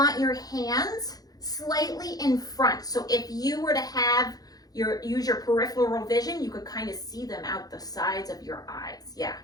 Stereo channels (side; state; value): right; late; 0.18 ms